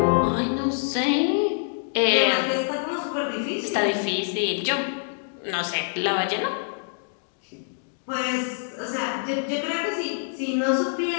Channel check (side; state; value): right; silent; digital silence